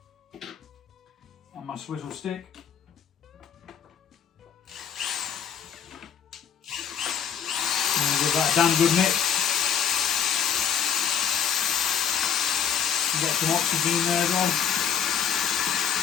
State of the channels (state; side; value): quieter; right; 8.1 dB